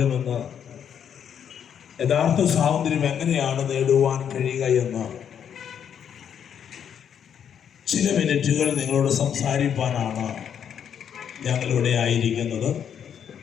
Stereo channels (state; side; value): quieter; right; 8.4 dB